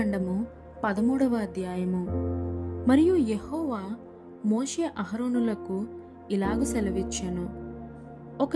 13వ అధ్యాయము. మరియు యెహోవా మోషే అహరోనులకు ఇలాగు సెలవిచ్చెను,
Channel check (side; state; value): both; identical; correlation 1.00